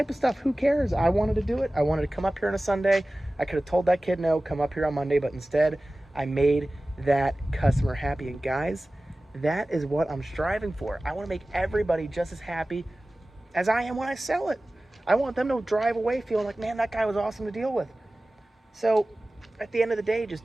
of stuff. Who cares? I wanted to do it. I wanted to come up here on a Sunday. I could have told that kid no, come up here on Monday, but instead I made that customer happy. And guys, that is what I'm striving for. I want to make everybody just as happy as I am when I sell it. I want them to drive away feeling like, man, that guy was awesome to deal with. So at the end of the day, just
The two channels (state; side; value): normal; both; correlation 0.97